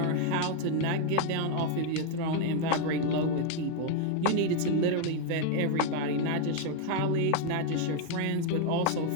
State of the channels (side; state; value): both; different; correlation 0.01